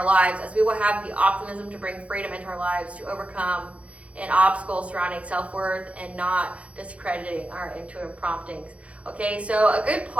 lives, as we will have the optimism to bring freedom into our lives, to overcome an obstacle surrounding self-worth and not discrediting our intuitive promptings. Okay, so a good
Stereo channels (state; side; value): late; left; 0.063 ms